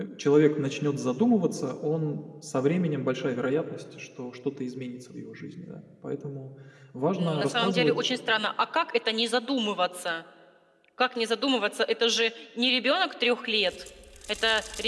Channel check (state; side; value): identical; both; correlation 1.00